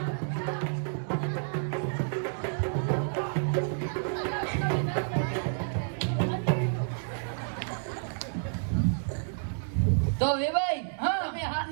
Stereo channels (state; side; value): silent; left; digital silence